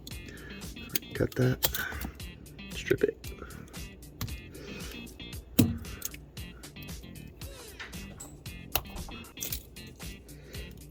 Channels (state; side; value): identical; both; correlation 1.00